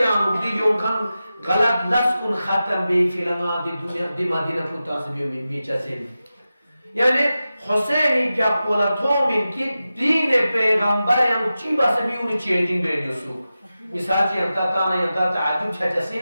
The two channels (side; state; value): both; inverted; correlation -0.93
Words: یا مبدیوں کھن غلط لسکن ختم بے فلنگا دی دنیا دی مدینہ پوتا سبیوں میں بیچا سن یعنی حسینی کیا پولتوں من کی دین پیغمبر یا چیبا سبیوں نے چینجنگ بیڈیو سو مثال چی انتا تانا ینتا تعجب چھچا